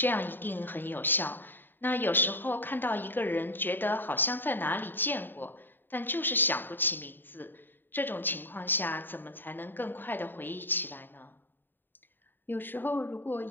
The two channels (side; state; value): right; late; 0.093 ms